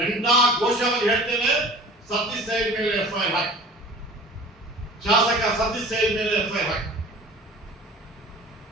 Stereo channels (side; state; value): both; normal; correlation 0.43